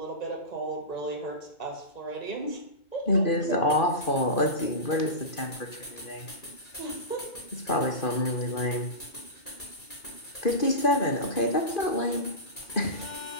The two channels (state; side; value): late; right; 2.5 ms